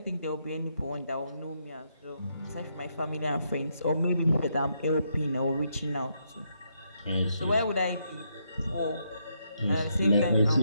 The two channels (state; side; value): inverted; both; correlation -0.77